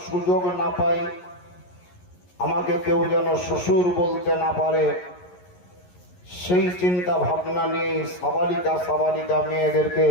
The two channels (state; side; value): late; right; 11 ms